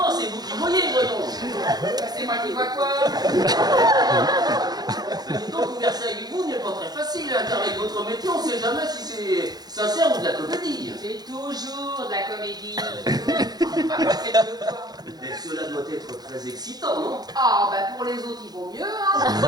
c'est vous qui voyez, voyons. Bah, c'est moi qui vois quoi? Dites donc, converser avec vous n'est pas très facile, hein, car avec votre métier, on sait jamais si c'est sincère ou de la comédie. C'est toujours de la comédie. Ah, faites de quoi? Mais cela doit être très excitant, non? Ah, bah pour les autres, il vaut mieux, hein.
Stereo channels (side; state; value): left; late; 0.19 ms